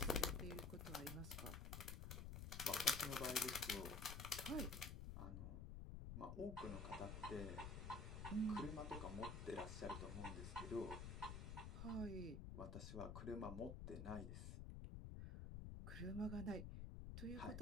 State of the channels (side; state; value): left; noise; rumble, 5 dB below the sound